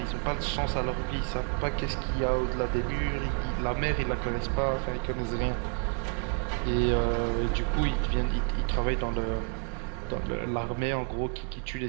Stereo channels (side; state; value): left; quieter; 34.6 dB